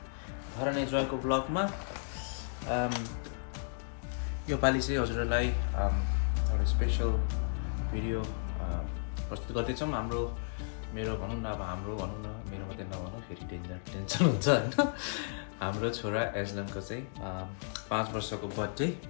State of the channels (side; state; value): right; silent; digital silence